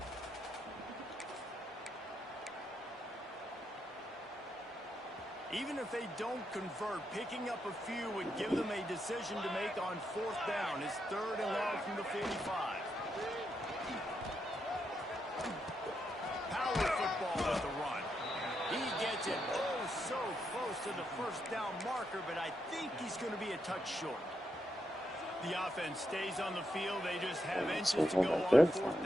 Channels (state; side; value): normal; both; correlation 0.82